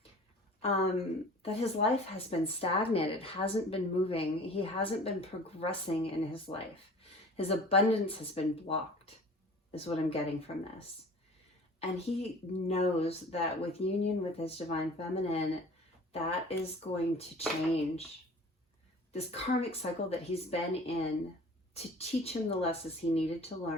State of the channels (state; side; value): normal; both; correlation 0.44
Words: that his life has been stagnant. It hasn't been moving. He hasn't been progressing in his life. His abundance has been blocked, is what I'm getting from this. And he knows that with union with his Divine Feminine, that is going to change. This karmic cycle that he's been in to teach him the lessons he needed to